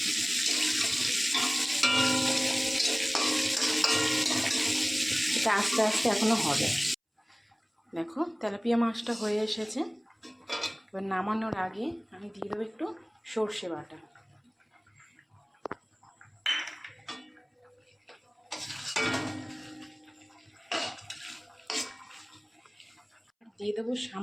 এটা আস্তে আস্তে এখনো হবে। দেখো তেলাপিয়া মাছটা হয়ে এসেছে। এবার নামানোর আগে আমি দিয়ে দেবো একটু সর্ষে বাটা, দিয়ে দেবো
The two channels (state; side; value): identical; both; correlation 1.00